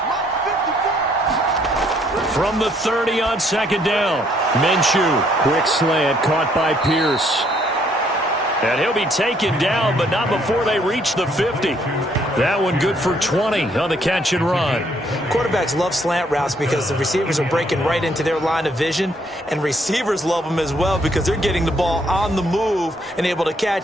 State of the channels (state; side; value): normal; both; correlation 0.67